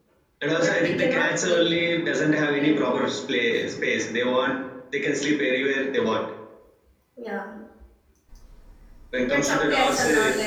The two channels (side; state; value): both; identical; correlation 1.00